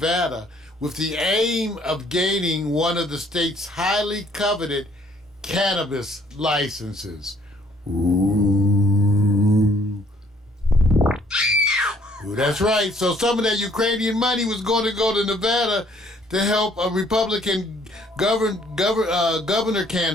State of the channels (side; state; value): both; normal; correlation 0.63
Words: with the aim of gaining one of the state's highly coveted cannabis licenses. Ooh, that's right. So some of that Ukrainian money was going to go to Nevada to help a Republican governor